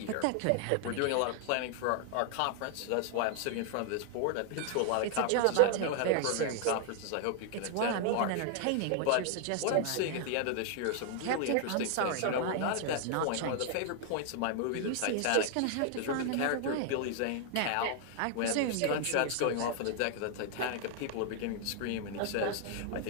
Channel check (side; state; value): both; different; correlation 0.00